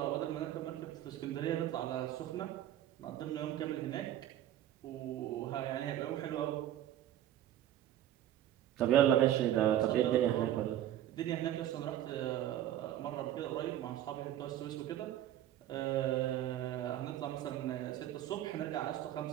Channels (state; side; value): quieter; left; 12.2 dB